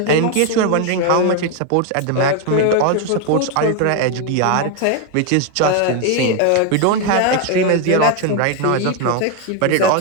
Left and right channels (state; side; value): different; both; correlation 0.01